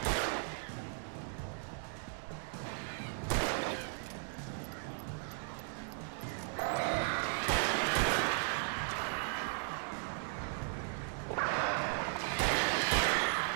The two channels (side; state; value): left; silent; 53 dB below the other